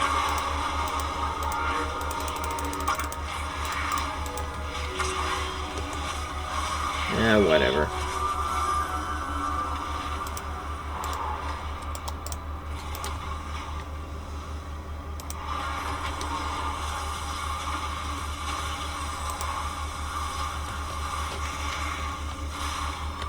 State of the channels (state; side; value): identical; both; correlation 1.00